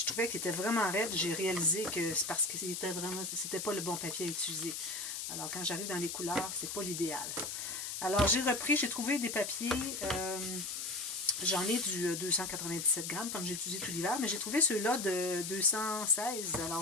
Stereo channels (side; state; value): left; noise; hiss, 5 dB below the sound